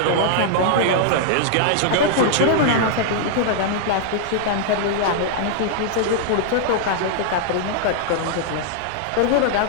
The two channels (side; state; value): both; different; correlation -0.01